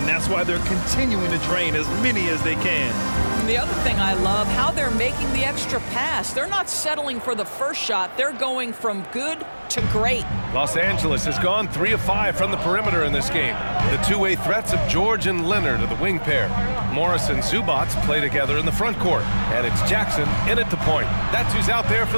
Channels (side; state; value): both; inverted; correlation -1.00